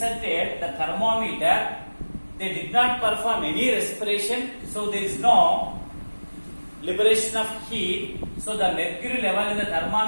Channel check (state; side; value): inverted; both; correlation -1.00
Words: the thermometer, they did not perform any respiration, so there is no liberation of heat, so the mercury level in the